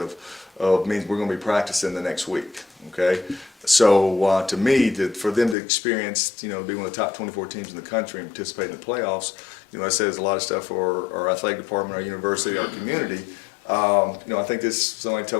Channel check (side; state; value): right; drops out; at 5.6 s